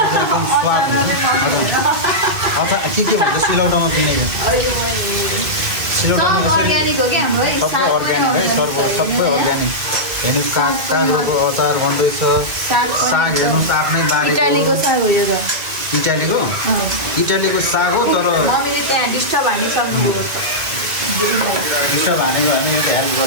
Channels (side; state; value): left; late; 1.9 ms